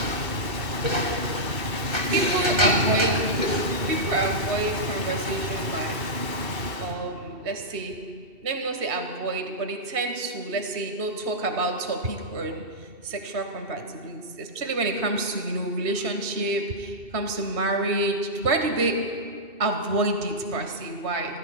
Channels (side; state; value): left; late; 2.7 ms